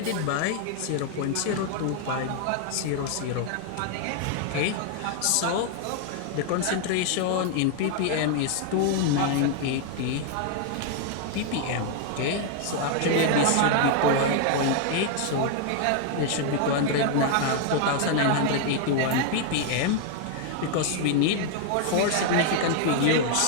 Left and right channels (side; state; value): both; different; correlation 0.00